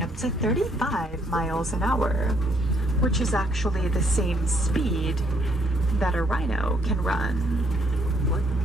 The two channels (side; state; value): both; normal; correlation 0.69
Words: up to 35 miles an hour, which is actually the same speed that a rhino can run.